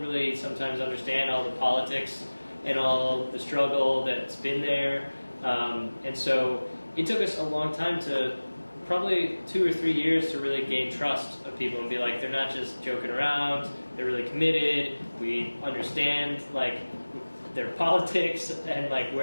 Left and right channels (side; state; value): both; inverted; correlation -1.00